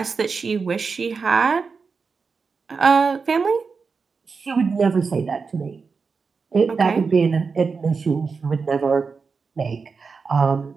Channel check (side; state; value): left; quieter; 5.0 dB